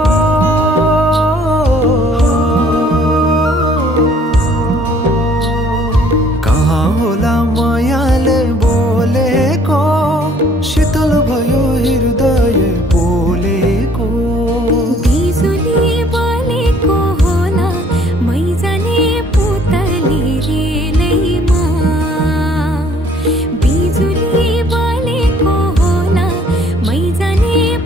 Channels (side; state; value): both; normal; correlation 0.59